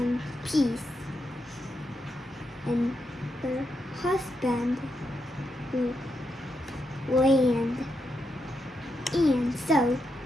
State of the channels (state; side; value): normal; both; correlation 0.84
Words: peace, and her husband would land. And so,